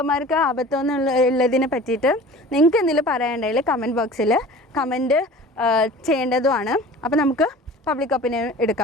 ആപത്തം എന്നുള്ളതിനെ പറ്റിയിട്ട് നിങ്ങൾക്ക് എന്തെങ്കിലും പറയാനുണ്ടെങ്കിൽ കമൻറ്റ് ബോക്സിൽ കമൻറ്റ് ചെയ്യേണ്ടതുമാണ്. അപ്പോൾ നമുക്ക് പബ്ലിക് ഒപ്പീനിയൻ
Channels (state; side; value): normal; both; correlation 0.41